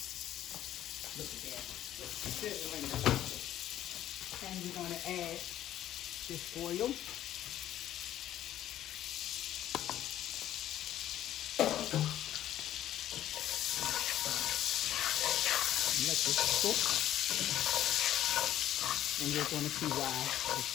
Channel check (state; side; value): quieter; right; 12.3 dB